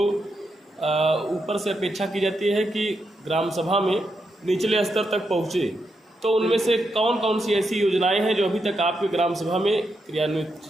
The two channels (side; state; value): both; normal; correlation 0.83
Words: ऊपर से अपेक्षा की जाती है कि ग्राम सभा में निचले स्तर तक पहुँचे, तो उनमें से कौन कौन सी ऐसी योजनाएं हैं जो अभी तक आपके ग्राम सभा में क्रियान्वित